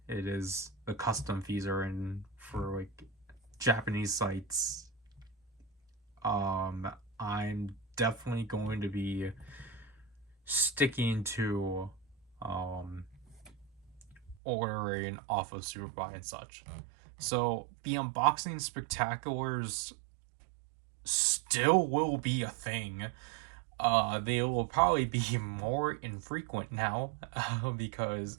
it is the custom fees are in for like Japanese sites. I'm definitely going to be sticking to ordering off of Superbuy and such. So the unboxing spectaculars still will be a thing. They will probably be more infrequent now because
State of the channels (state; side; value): drops out; left; at 14.4 s